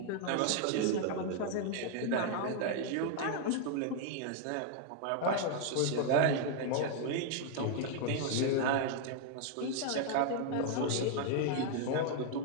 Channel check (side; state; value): both; different; correlation 0.00